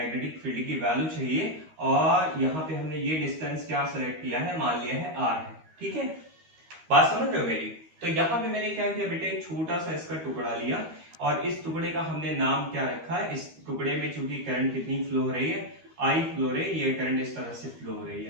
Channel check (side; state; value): left; late; 13 ms